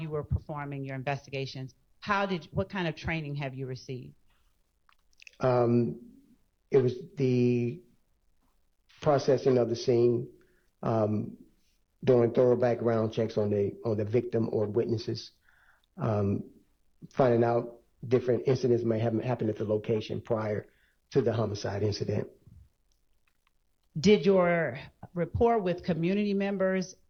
were performing your investigations, what kind of training have you received? It was the processing of the scene, doing thorough background checks on the victim or witnesses, finding out different incidents may have happened at the location prior to the homicide incident. Did your rapport with community members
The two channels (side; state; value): both; identical; correlation 1.00